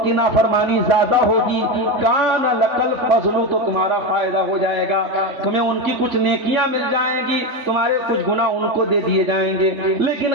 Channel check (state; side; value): late; left; 3.5 ms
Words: کی نافرمانی زیادہ ہوگی، کان لکل فضل، تو تمہارا فائدہ ہو جائے گا، تمہیں ان کی کچھ نیکیاں مل جائیں گی، تمہارے کچھ گناہ ان کو دے دیے جائیں گے۔ لیکن